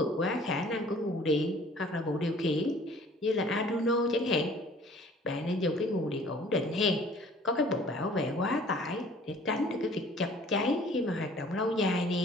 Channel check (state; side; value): normal; both; correlation 0.52